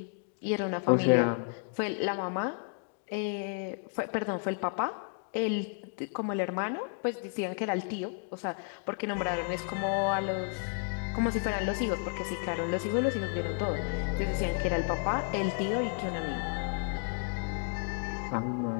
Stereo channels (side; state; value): right; silent; 56 dB below the other